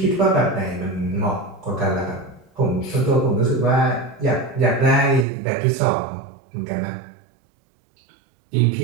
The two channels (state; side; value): drops out; left; at 5.2 s